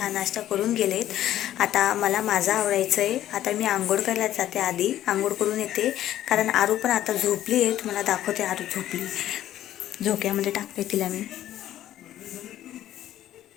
नाश्ता करून गेलेत. आता मला माझं आवडायचं आहे. आता मी आंघोळ करायला जाते, आधी आंघोळ करून येते, कारण आरू पण आता झोपली आहे. तुम्हाला दाखवते, आरू झोपली, झोक्यामध्ये टाकते तिला मी.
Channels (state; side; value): quieter; right; 12.6 dB